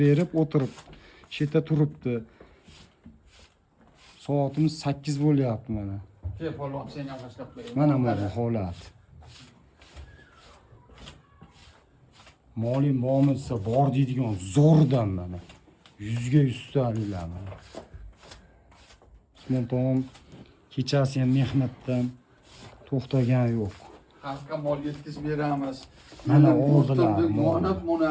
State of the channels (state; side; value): identical; both; correlation 1.00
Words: berib o'tirib, shu yerda turibdi. Soatimiz 8 bo'lyapti mana. Kel polvon, sen ham boshlab qo'y. Mana bu holat. Molim bormi desa bor deydigan zo'rdan mana. 100 ga 100 ta'lilar mana. Usmon tog'om kechasi ham mehnatdan to'xtagan yo'q. Xalqqa mol yetkazib beramiz. Mana oldilar mol. Mana